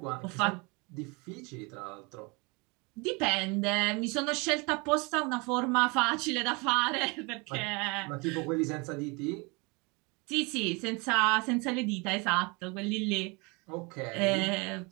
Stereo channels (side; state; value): left; quieter; 28.8 dB